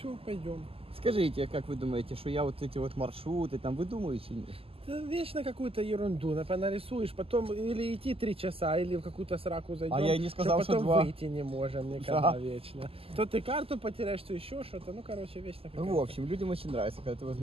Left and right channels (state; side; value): late; left; 0.28 ms